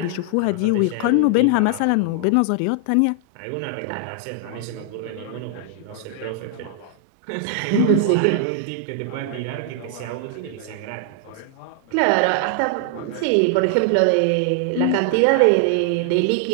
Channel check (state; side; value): different; both; correlation 0.00